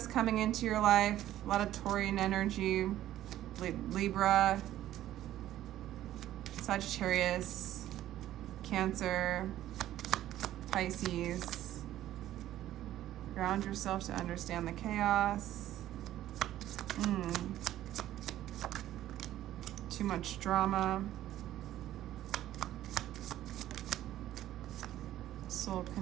coming into your life, a lot of Taurian energy, Libra, Sagittarius, Cancer, Pisces. Ground yourself to understand the chaos. Too much drama. Soul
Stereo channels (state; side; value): quieter; left; 13.2 dB